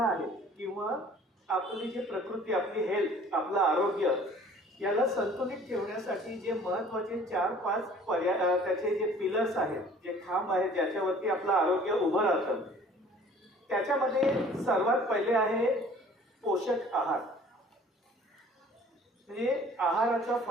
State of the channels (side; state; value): both; normal; correlation 0.51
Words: आहेत किंवा आपली जी प्रकृती, आपली हेल्थ, आपलं आरोग्य याला संतुलित ठेवण्यासाठी जे महत्त्वाचे 4-5 पर्याय, त्याचे जे पिलर्स आहेत, जे खांब आहेत ज्याच्यावरती आपलं आरोग्य उभं राहतं, त्याच्यामध्ये सर्वात पहिले आहे पोषक आहार. म्हणजे आहाराचा